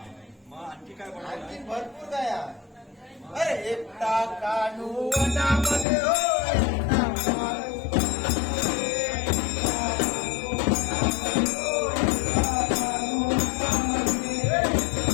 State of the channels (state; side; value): drops out; right; at 5.9 s